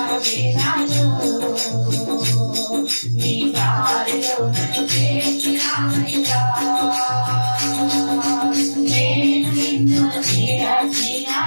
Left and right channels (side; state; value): both; inverted; correlation -1.00